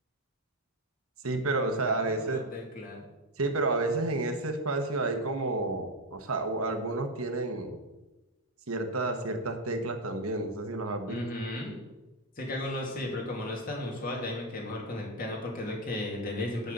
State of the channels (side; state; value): both; normal; correlation 0.06